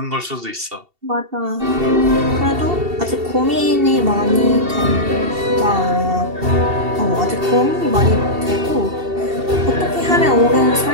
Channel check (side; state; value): left; late; 2.7 ms